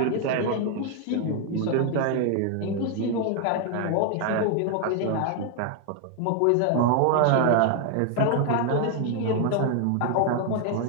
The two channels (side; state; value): both; different; correlation 0.00